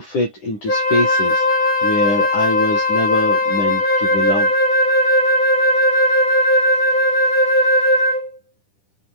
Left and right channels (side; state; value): right; late; 9.9 ms